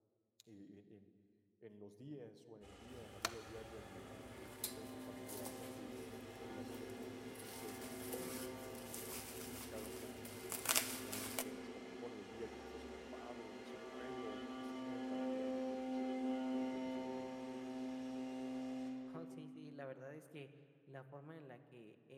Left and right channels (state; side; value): identical; both; correlation 1.00